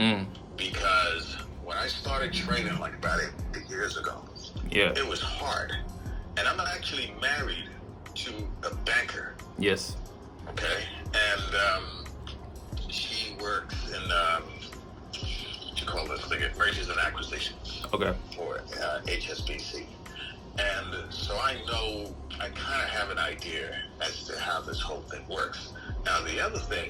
Because when I started trading like about 8 years ago, it was hard. And I'm actually married to a banker. Yes. Okay. And she works in mergers and acquisitions. Okay. For HSBC. And so I kind of have an idea as to how this whole thing works. Now, the other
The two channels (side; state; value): both; identical; correlation 1.00